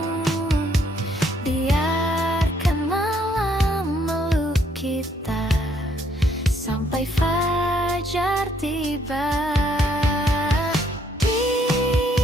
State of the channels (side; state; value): both; normal; correlation 0.68